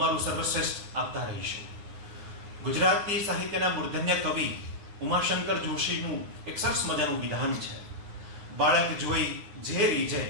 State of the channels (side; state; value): left; late; 9.6 ms